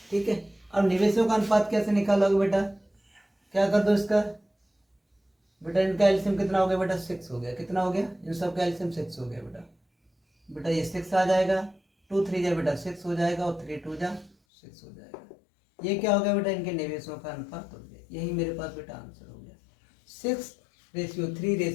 ठीक है, अब निवेशों का अनुपात कैसे निकालोगे बेटा, क्या कर दो इसका बेटा, इनका एलसीएम कितना हो गया बेटा 6 हो गया। कितना हो गया इन सब का एलसीएम 6 हो गया बेटा। बेटा ये 6 आ जाएगा, 2 3 जा बेटा 6 हो जाएगा, और 3 2 जा 6 हो जाएगा। ये क्या हो गया बेटा इनके निवेशों का अनुपात हो गया। यही मेरे पास बेटा आंसर हो गया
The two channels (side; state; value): right; drops out; at 14.4 s